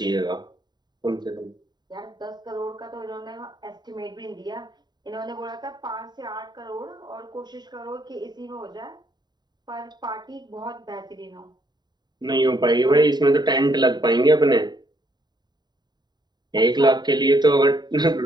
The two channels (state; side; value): late; left; 0.20 ms